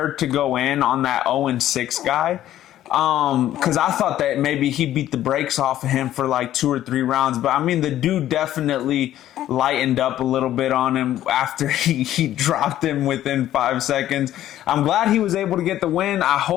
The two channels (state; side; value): quieter; right; 12.7 dB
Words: to go in on that 0-6 guy. Because I thought that maybe he beat the brakes off of him for like 2 or 3 rounds. But I mean, the dude definitely lightened up a little bit on him after he dropped him within 5 seconds. I'm glad he was able to get the win. I